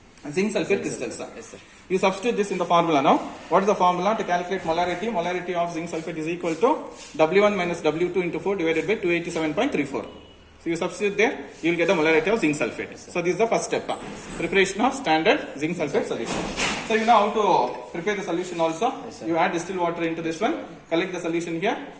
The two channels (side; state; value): both; identical; correlation 1.00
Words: zinc sulfate crystals. Yes, sir. You substitute this in the formula now. What is the formula to calculate molarity? Molarity of zinc sulfate is equal to W1 minus W2 into 4 divided by 287.34. So you substitute there, you will get the molarity of zinc sulfate. Yes, so this is the first step. Preparation of standard zinc sulfate solution. So you know how to prepare the solution also. Yes, you add distilled water into this one. Collect the solution here.